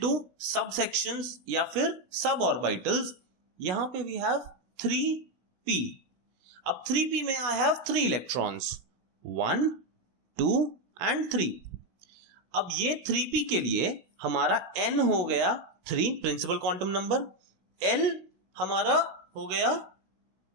सब सेक्शंस या फिर सब ऑर्बिटल्स, यहां पे वी हैव 3p. अब 3p में आई हैव 3 इलेक्ट्रॉन्स 1 2 एंड 3. अब ये 3p के लिए हमारा n हो गया 3 प्रिंसिपल क्वांटम नंबर. l हमारा हो गया,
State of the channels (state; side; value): late; left; 16 ms